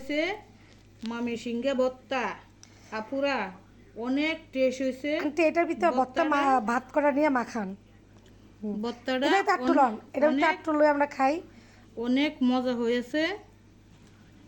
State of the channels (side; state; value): both; identical; correlation 1.00